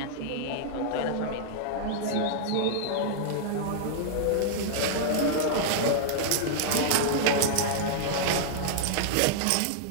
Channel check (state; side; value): different; both; correlation -0.01